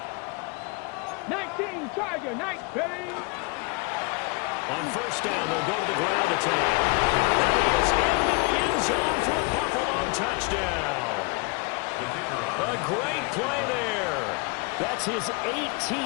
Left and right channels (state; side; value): quieter; right; 29.9 dB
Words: Tiger, nice, ready. On first down, they'll go to the ground attack. And he is into the end zone for a Buffalo touchdown. A great play there. That's his